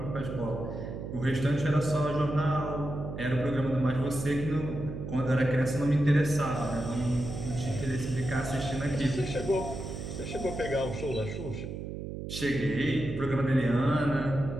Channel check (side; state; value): right; noise; hum, 7 dB below the sound